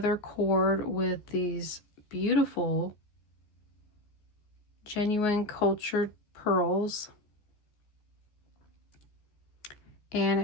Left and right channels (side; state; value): right; late; 14 ms